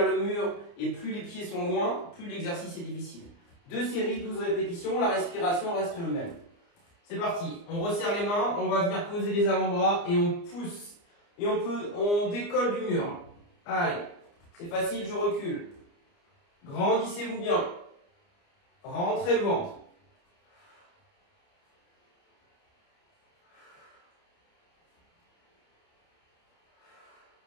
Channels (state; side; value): late; right; 29 ms